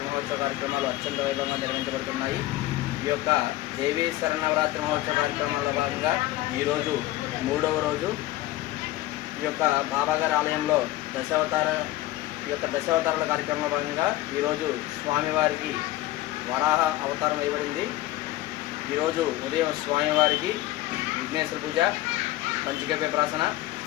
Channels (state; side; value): quieter; right; 16.2 dB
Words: మహోత్సవ కార్యక్రమాలు అత్యంత వైభవంగా నిర్వహించబడుతున్నాయి. ఈ యొక్క దేవీ శరణవరాత్రి మహోత్సవ కార్యక్రమాల్లో భాగంగా ఈరోజు 3వ రోజు. ఈ ఈ యొక్క బాబాగారి ఆలయంలో దశావతారాల కార్యక్రమంలో భాగంగా ఈరోజు స్వామివారికి వరాహ అవతారం వేయబడింది. ఈరోజు ఉదయం స్వామివారికి విఘ్నేశ్వర పూజ, పంచగవ్య ప్రాసన,